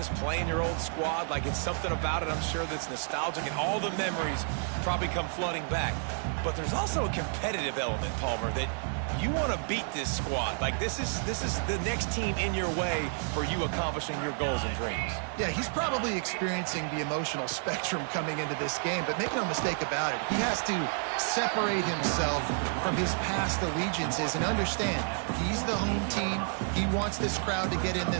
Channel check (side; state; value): left; silent; 55 dB below the other